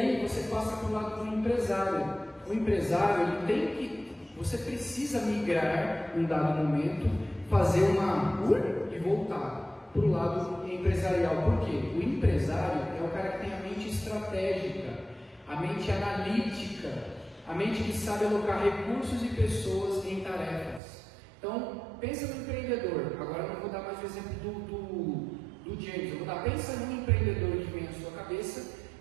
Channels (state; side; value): drops out; left; at 20.8 s